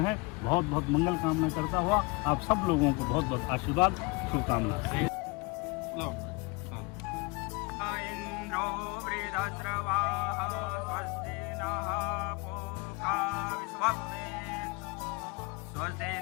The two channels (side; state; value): right; quieter; 26.9 dB